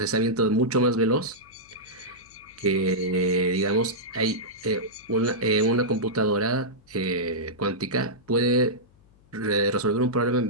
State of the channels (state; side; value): noise; left; hum, 30 dB below the sound